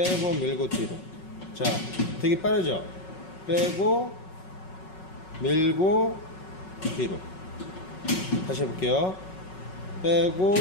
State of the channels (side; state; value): right; late; 5.4 ms